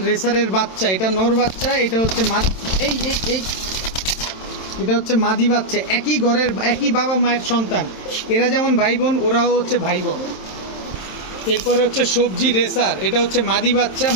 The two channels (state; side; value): late; right; 27 ms